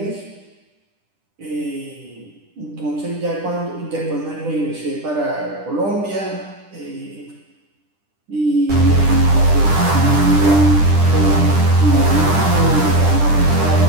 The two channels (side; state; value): left; late; 10 ms